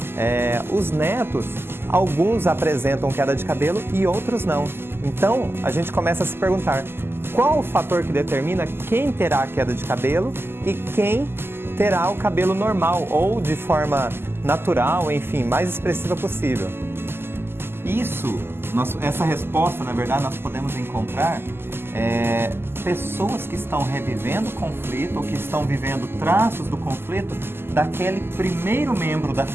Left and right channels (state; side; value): late; left; 0.11 ms